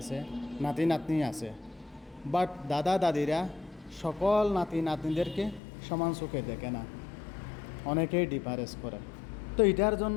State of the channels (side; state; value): right; drops out; at 5.6 s